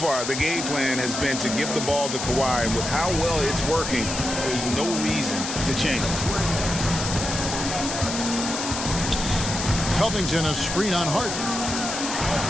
the game plan has been to give the ball to Kawhi. And with how well it's working, there's no reason to change. Covington, a screen on Harden.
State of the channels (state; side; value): noise; left; hiss, 5 dB below the sound